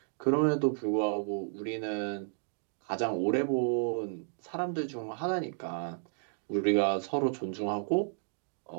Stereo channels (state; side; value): silent; left; digital silence